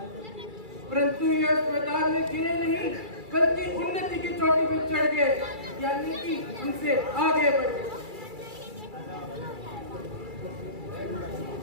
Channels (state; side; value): late; left; 2.3 ms